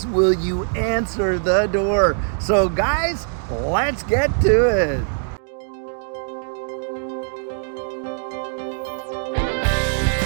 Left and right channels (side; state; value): left; silent; digital silence